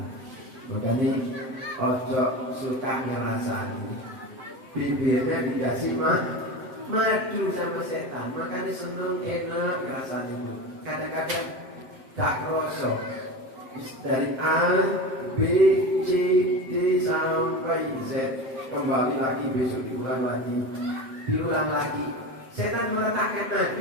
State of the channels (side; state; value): left; late; 7.7 ms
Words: Makanya ojo suka ngerasani. Bibirnya dikasih madu sama setan, makanya seneng enak ngerasani. Kadang-kadang tak rosok. Dari A, B, C, D sampai Z, kembali lagi besok diulang lagi. Setan meletakkan